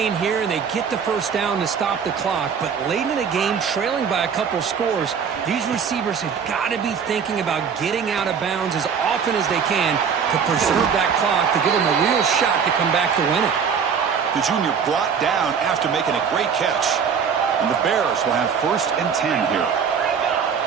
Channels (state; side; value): quieter; left; 6.7 dB